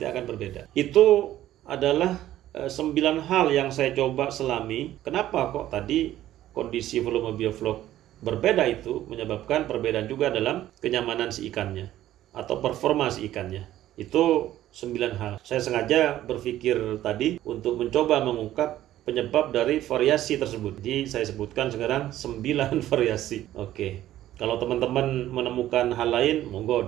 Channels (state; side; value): quieter; left; 13.4 dB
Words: akan berbeda. Itu adalah 9 hal yang saya coba selami. Kenapa kok tadi kondisi volume bioflok berbeda itu menyebabkan perbedaan juga dalam kenyamanan si ikannya atau performa si ikannya. Itu 9 hal. Saya sengaja berpikir tadi untuk mencoba mengungkap penyebab dari variasi tersebut. Jadi saya sebutkan sekarang 9 variasi. Oke. Kalau teman-teman menemukan hal lain, monggo